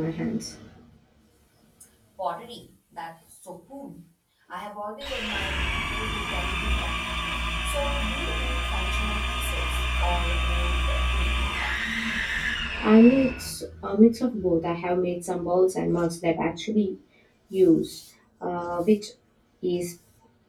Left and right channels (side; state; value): both; identical; correlation 1.00